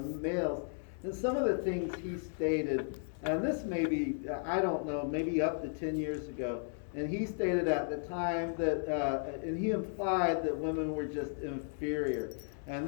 And some of the things he stated, and this may be, I don't know, maybe up to 10 years ago, and he stated at the time that, and he implied that women were just inferior. And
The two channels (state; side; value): silent; right; 55 dB below the other